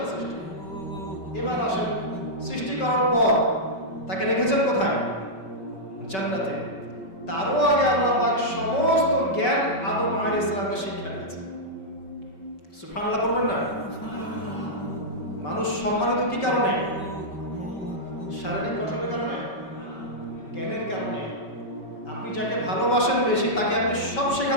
সৃষ্টি। এবার আসেন, সৃষ্টি করার পর তাকে রেখেছেন কোথায়? জান্নাতে। তারও আগে আল্লাহ পাক সমস্ত জ্ঞান আদম আলাইহিস সালামকে শিক্ষা দিয়েছেন। সুবহানাল্লাহ বলবেন না? মানুষ সম্মানিত কি কারণে? শারীরিক গঠনের কারণে, জ্ঞানের কারণে। আপনি যাকে ভালোবাসেন বেশি তাকে আপনি সব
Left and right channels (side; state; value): right; late; 5.2 ms